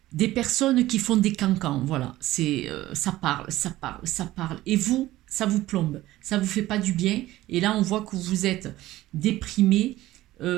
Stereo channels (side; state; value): left; quieter; 16.1 dB